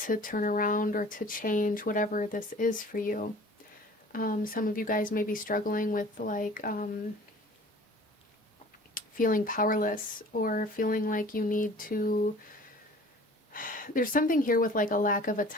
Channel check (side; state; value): both; normal; correlation 0.47